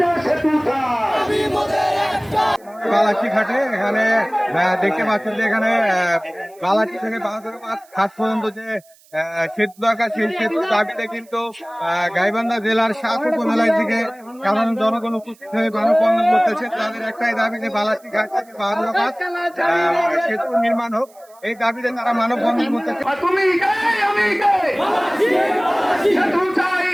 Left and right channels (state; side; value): noise; right; hiss, 29 dB below the sound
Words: সেতু চাই। বালাচি ঘাটে এখানে দেখতে পাচ্ছেন যে এখানে বালাচি থেকে বাহাদুরাবাদ ঘাট পর্যন্ত যে সেতু দরকার সেই সেতুর দাবিতে কিন্তু গাইবান্ধা জেলার 7 উপজেলার দিকে সাধারণ জনগণ উপস্থিত হয়ে মানববন্ধন করতেছে। তাদের একটাই দাবি যে বালাচি ঘাট থেকে বাহাদুরাবাদ সেতু নির্মাণ হোক, এই দাবিতে তারা মানববন্ধন করতেছে। তুমি কে আমি কে, সেতু চাই